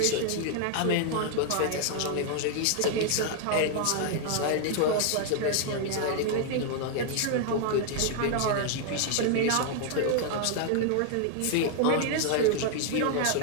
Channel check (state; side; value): different; both; correlation 0.00